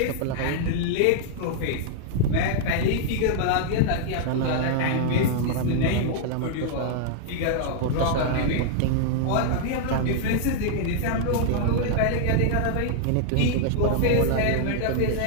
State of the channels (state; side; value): different; both; correlation -0.01